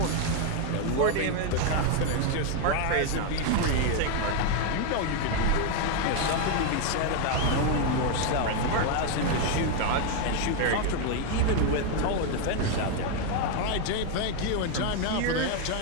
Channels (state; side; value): different; both; correlation 0.01